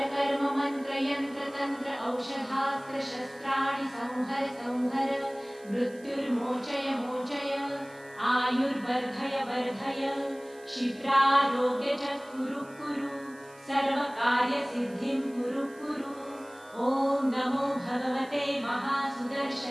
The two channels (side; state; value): right; noise; hiss, 25 dB below the sound